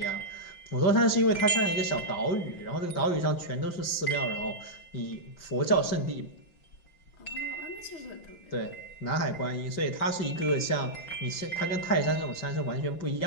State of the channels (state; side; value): late; right; 5.8 ms